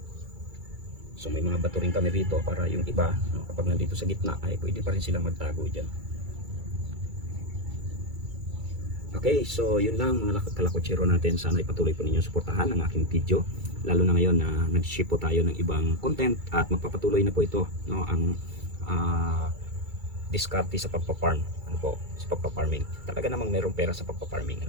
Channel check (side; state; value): left; late; 2.3 ms